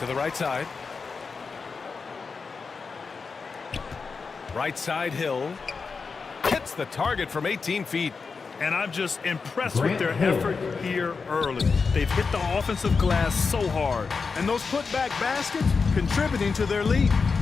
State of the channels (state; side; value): quieter; right; 4.9 dB